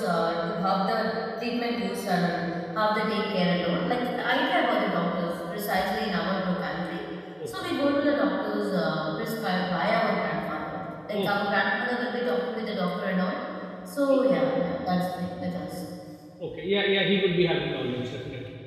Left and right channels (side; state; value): both; identical; correlation 1.00